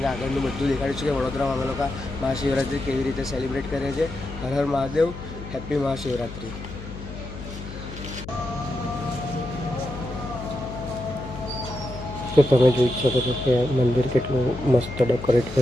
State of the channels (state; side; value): noise; left; hum, 11 dB below the sound